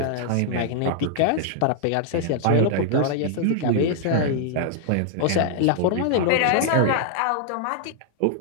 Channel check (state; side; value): different; both; correlation -0.01